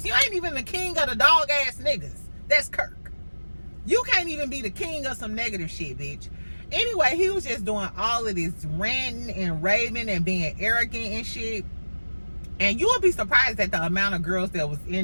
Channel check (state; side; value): inverted; both; correlation -1.00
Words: You ain't even the king of the dog ass niggas. That's Kirk. You can't even be the king of some negative shit, bitch. Anyway, he was just doing all of this ranting and raving and being arrogant and shit. And you will be surprised at the amount of girls that was